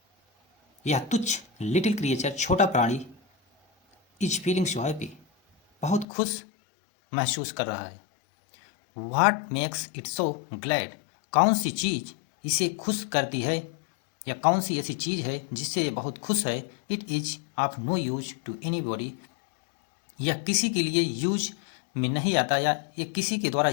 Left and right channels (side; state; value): right; drops out; at 6.1 s